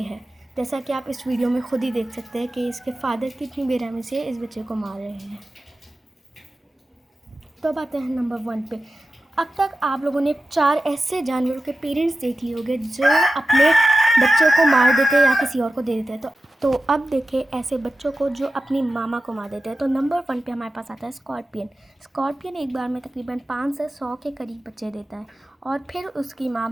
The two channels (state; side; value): normal; both; correlation 0.93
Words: हैं, जैसा कि आप इस वीडियो में खुद ही देख सकते हैं कि इसके फादर कितनी बेरहमी से इस बच्चे को मार रहे हैं। तो अब आते हैं नंबर 1 पे। अब तक आप लोगों ने 4 ऐसे जानवरों के पेरेंट्स देख लिए होंगे जो अपने बच्चों को मार देते हैं या किसी और को दे देते हैं। तो अब देखें ऐसे बच्चों को जो अपनी मामा को मार देते हैं। तो नंबर 1 पे हमारे पास आता है स्कॉर्पियन। स्कॉर्पियन एक बार में तकरीबन 5 से 100 के करीब बच्चे देता है और फिर उसकी